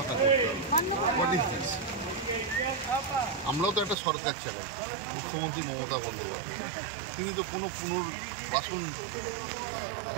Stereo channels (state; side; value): drops out; left; at 4.0 s